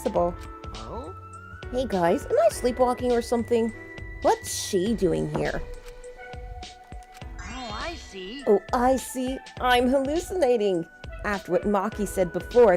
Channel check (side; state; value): both; identical; correlation 1.00